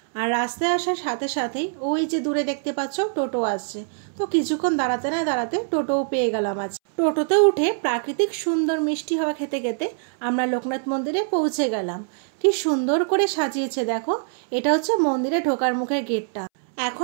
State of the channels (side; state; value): left; silent; 63 dB below the other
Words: আর রাস্তায় আসার সাথে সাথেই ওই যে দূরে দেখতে পাচ্ছ টোটো আসছে। তো কিছুক্ষণ দাঁড়াতে না দাঁড়াতে টোটোও পেয়ে গেলাম। আজ টোটোতে উঠে প্রাকৃতিক সুন্দর মিষ্টি হাওয়া খেতে খেতে আমরা লোকনাথ মন্দিরে পৌঁছে গেলাম। কি সুন্দর করে সাজিয়েছে দেখো, এটা হচ্ছে মন্দিরে ঢোকার মুখের গেটটা।